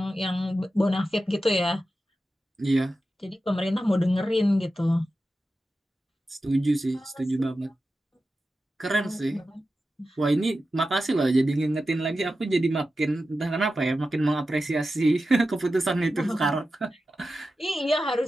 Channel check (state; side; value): normal; both; correlation 0.92